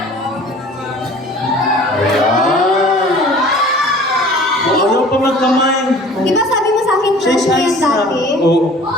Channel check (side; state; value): both; normal; correlation 0.47